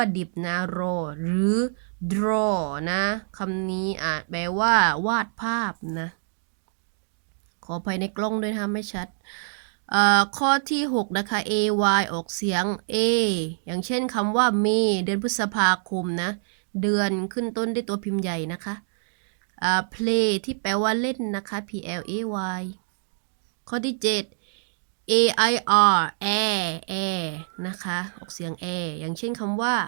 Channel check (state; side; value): silent; left; digital silence